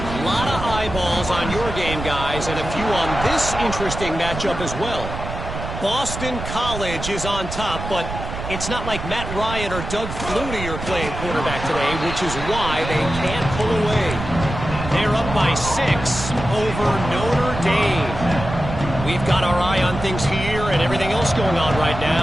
lot of eyeballs on your game, guys, and a few on this interesting matchup as well. Boston College is on top, but it's not like Matt Ryan or Doug Flutie are playing quarterback today, which is why they can't pull away. They're up by 6 over Notre Dame. We've got our eye on things here and everything else going on right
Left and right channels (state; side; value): noise; right; rumble, 7 dB below the sound